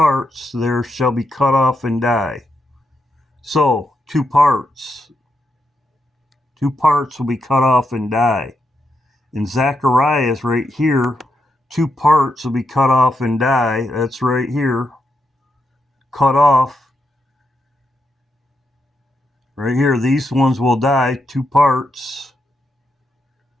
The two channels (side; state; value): both; normal; correlation 0.83